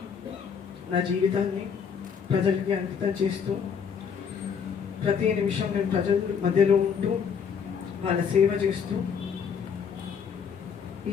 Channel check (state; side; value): quieter; right; 6.8 dB